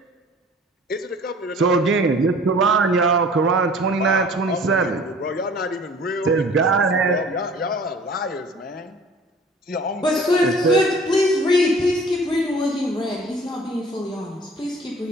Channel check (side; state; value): both; normal; correlation 0.48